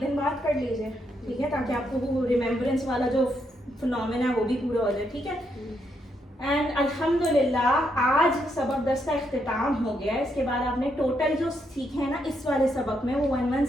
बात कर लीजिए, ठीक है, ताकि आपको वो रिमेम्बरेंस वाला जो फिनोमेना है वो भी पूरा हो जाए, ठीक है। एंड अल्हम्दुलिल्लाह आज सबक 10 का इख्तिताम हो गया। इसके बाद आपने टोटल जो सीखे हैं ना इस वाले सबक में वो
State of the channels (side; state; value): both; normal; correlation 0.78